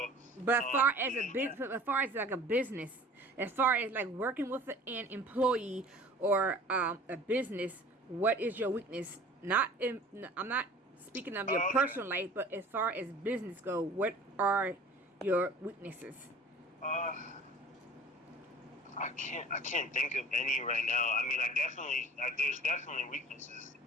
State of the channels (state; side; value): normal; both; correlation 0.44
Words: but as far as as far as like a business, as far as like working with an employee or a business, what is your weakness? I'm not speaking of your personal life, but as far as business go, what are your weaknesses? I can't think of any right now. I mean, there's definitely weaknesses.